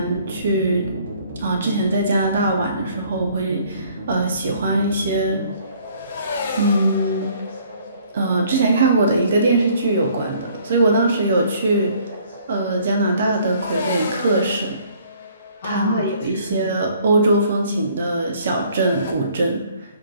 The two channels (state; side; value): inverted; both; correlation -0.59